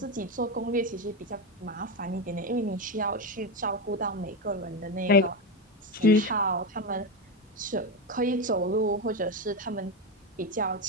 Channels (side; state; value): both; normal; correlation 0.13